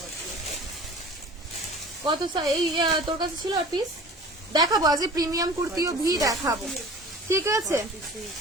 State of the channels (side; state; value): both; normal; correlation 0.41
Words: কত এই তোর কাছে ছিল আর পিস দেখাবো, আজ প্রিমিয়াম কুর্তিও ভি দেখাবো, ঠিক আছে।